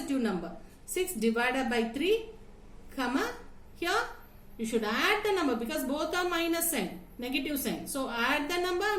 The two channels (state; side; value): identical; both; correlation 1.00